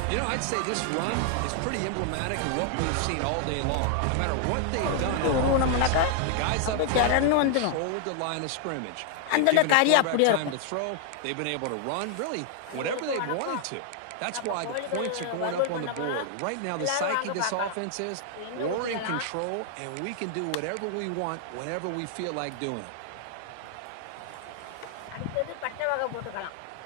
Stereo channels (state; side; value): different; both; correlation 0.00